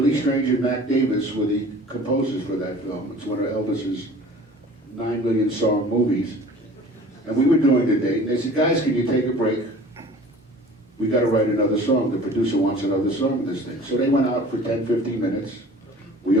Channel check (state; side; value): normal; both; correlation 0.45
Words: Strange and Mac Davis were the composers for that film. It's one of Elvis's 9 million song movies. And we were doing the date, and they said, guys, can you take a break? We got to write another song. The producer wants another song in this thing. So they went out for 10, 15 minutes. We